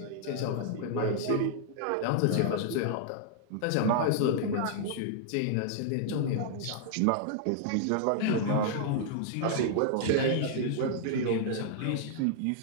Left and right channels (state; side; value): different; both; correlation -0.01